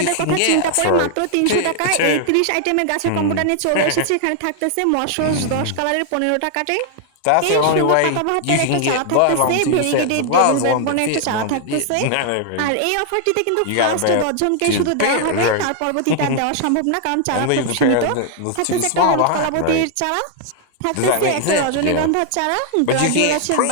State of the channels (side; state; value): both; different; correlation 0.00